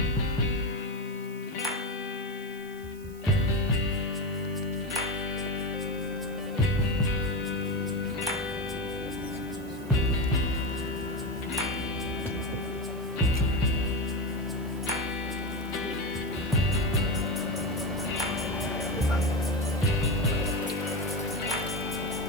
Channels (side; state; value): right; noise; hiss, 22 dB below the sound